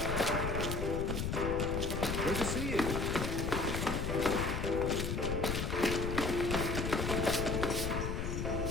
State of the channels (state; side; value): noise; left; rumble, 1 dB below the sound